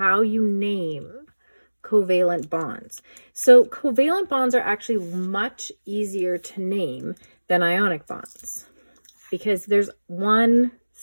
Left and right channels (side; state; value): both; inverted; correlation -1.00